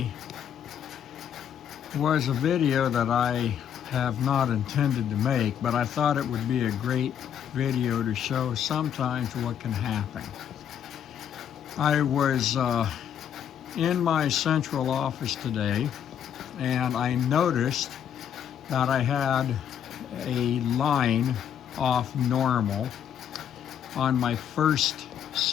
was a video that I have not intended to make, but I thought it would be a great video to show sometimes what can happen. I was in my central office today and I noticed that I had a line off normal on my first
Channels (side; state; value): right; quieter; 9.1 dB